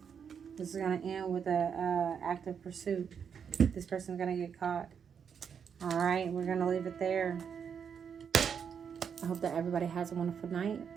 This is going to end with a active pursuit. This person's going to get caught. All right, we're going to leave it there. I hope that everybody has a wonderful night.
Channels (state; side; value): quieter; left; 7.2 dB